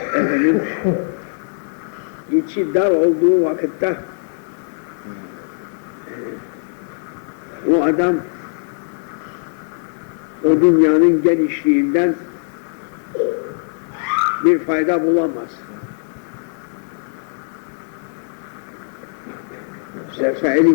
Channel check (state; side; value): silent; right; digital silence